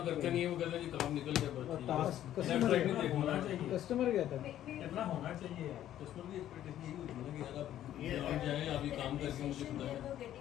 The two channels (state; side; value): quieter; right; 12.0 dB